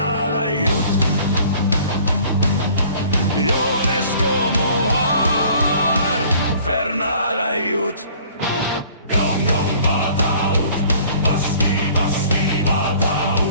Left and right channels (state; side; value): inverted; both; correlation -0.52